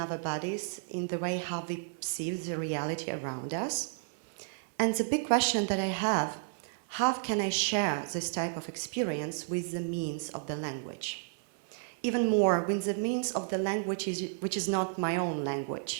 bodies, in the way how we perceive the reality around us. And the big question that I have, how can I share this type of experience with the means of the language? Even more, with the means of the language which is not my own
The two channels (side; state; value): left; silent; 56 dB below the other